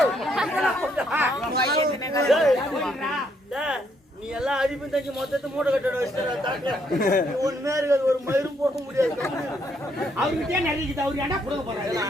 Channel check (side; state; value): both; normal; correlation 0.72